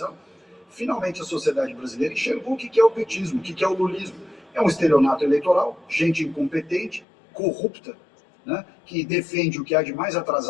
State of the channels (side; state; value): right; drops out; at 7.1 s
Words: finalmente a sociedade brasileira enxergou o que é o petismo, o que é o lulismo. É um estelionato eleitoral, gente incompetente, corrupta, né, que defende o que há de mais